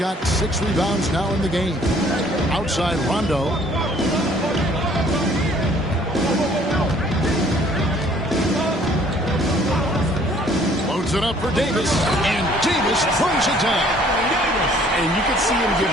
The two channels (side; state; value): both; normal; correlation 0.58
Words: 6 rebounds now in the game. Outside Rondo. Loads it up for Davis. And Davis throws it down. And you could see him give